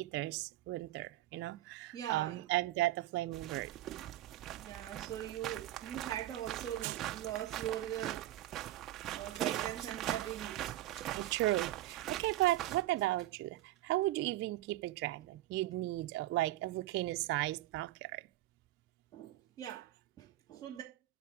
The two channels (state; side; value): quieter; left; 15.2 dB